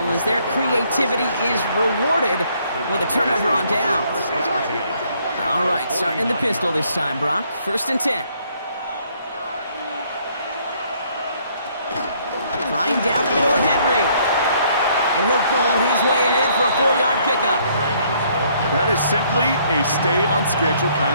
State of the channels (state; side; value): inverted; both; correlation -0.66